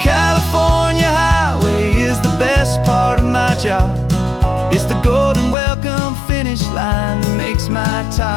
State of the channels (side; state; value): right; drops out; at 5.6 s